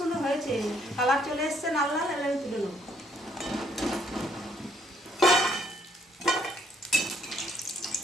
হয়েছে, কালার চলে এসছে লাল লাল। এবার আমি তুলে নেব।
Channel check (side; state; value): both; normal; correlation 0.68